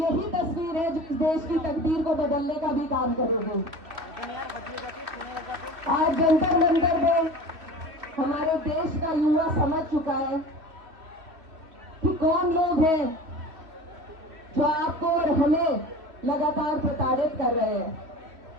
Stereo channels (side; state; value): left; late; 3.0 ms